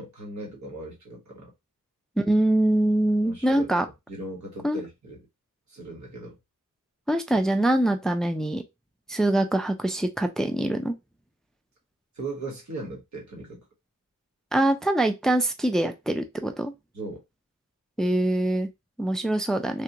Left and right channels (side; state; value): both; normal; correlation 0.90